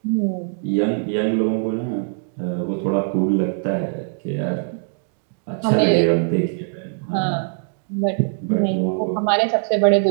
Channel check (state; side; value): silent; left; digital silence